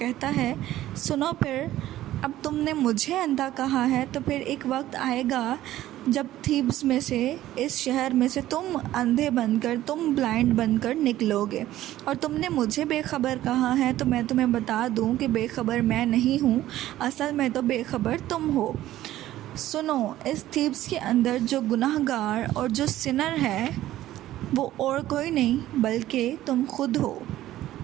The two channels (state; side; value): quieter; left; 14.3 dB